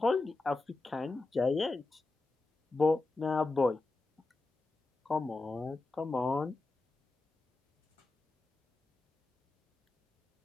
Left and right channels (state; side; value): quieter; right; 3.3 dB